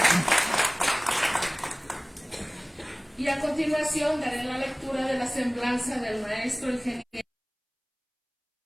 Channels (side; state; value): both; identical; correlation 1.00